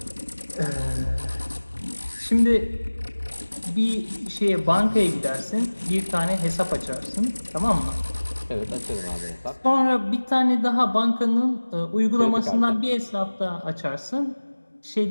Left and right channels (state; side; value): inverted; both; correlation -1.00